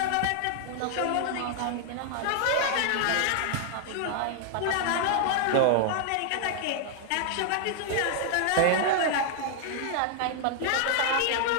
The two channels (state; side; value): different; both; correlation 0.00